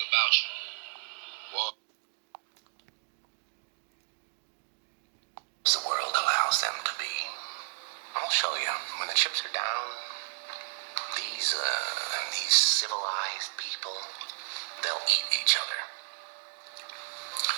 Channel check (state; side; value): silent; left; digital silence